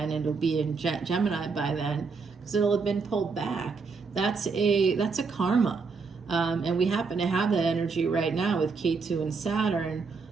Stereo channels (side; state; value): left; quieter; 4.8 dB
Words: and it'll be in Gemini by then because it'll have been pulled back. That's a karma, and we happen to have that energy right now with Ketu and Saturn.